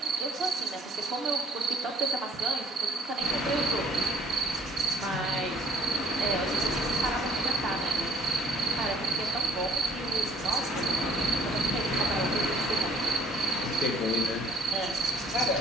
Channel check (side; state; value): both; normal; correlation 0.57